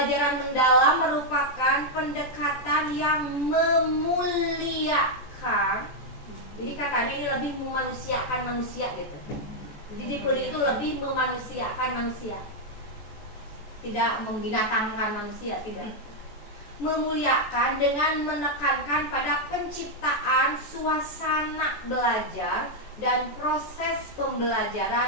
mendalam merupakan pendekatan yang memuliakan. Jadi katanya ini lebih memanusiakan manusia gitu. Jadi deep learning itu lebih memanusiakan manusia. Tidak membinatangkan manusia, tidak. Memuliakan dengan menekankan pada penciptaan suasana belajar dan proses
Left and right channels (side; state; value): right; late; 14 ms